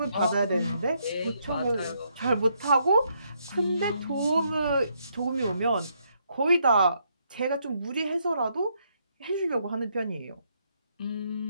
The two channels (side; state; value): both; inverted; correlation -0.75